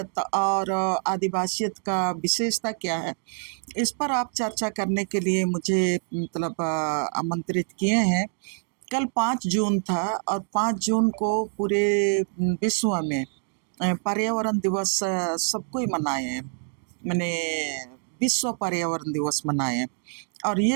और आदिवासियत का विशेषता क्या है, इस पर आप चर्चा करने के लिए मुझे मतलब आमंत्रित किए हैं। कल 5 जून था और 5 जून को पूरे विश्व में पर्यावरण दिवस सबको ही मनाए हैं। मैंने विश्व पर्यावरण दिवस मनाए हैं और ये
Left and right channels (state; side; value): silent; left; 57 dB below the other